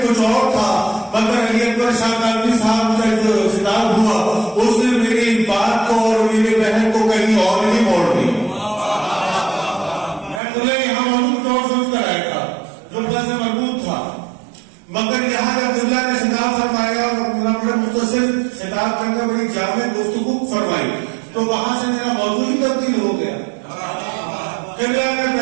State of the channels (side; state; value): left; drops out; at 10.4 s